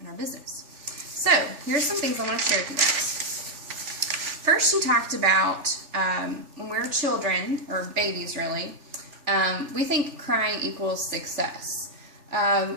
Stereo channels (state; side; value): late; left; 3.4 ms